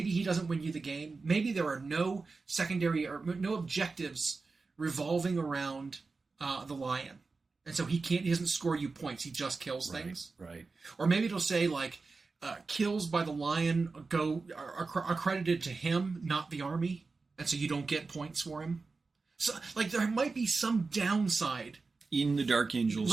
he doesn't win you the game. Maybe there are no secondary or no objectives revolving around the lion, and so he doesn't score you points. He just kills things. Right. Or maybe it'll say like kills by the lion are credited to him, not the army, and so you don't get points for him. So like there might be some downside in the Dark Angels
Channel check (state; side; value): quieter; left; 4.1 dB